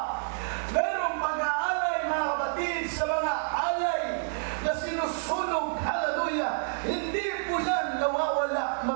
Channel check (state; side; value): silent; left; digital silence